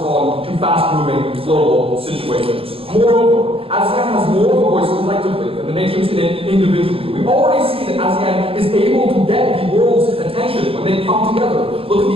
to fast-moving global situations. Moreover, ASEAN has more of a voice collectively than the nations in it individually. We already see that ASEAN is able to get the world's attention when they come together. Look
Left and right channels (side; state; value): left; late; 0.27 ms